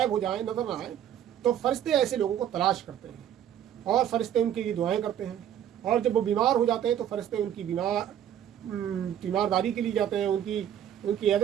हो जाए, नज़र ना आए, तो फरिश्ते ऐसे लोगों को तलाश करते हैं और फरिश्ते उनके लिए दुआएं करते हैं। और जब वो बीमार हो जाते हैं तो फरिश्ते उनकी बीमारदारी के लिए जाते हैं, उनकी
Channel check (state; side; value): quieter; left; 10.3 dB